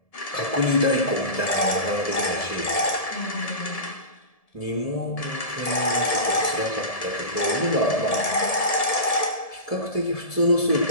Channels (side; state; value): right; late; 1.7 ms